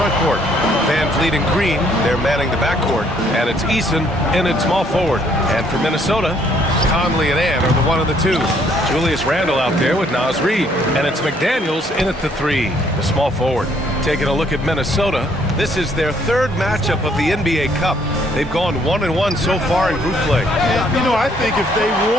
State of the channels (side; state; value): both; normal; correlation 0.66